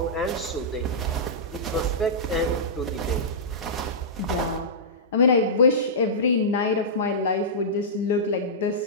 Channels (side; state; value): both; normal; correlation -0.16